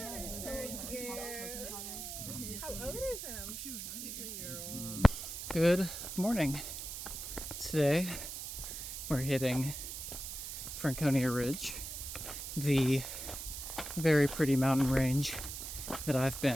Good morning. Today we're hitting Franconia Ridge, the very pretty mountain range that I've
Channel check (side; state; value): right; noise; hiss, 7 dB below the sound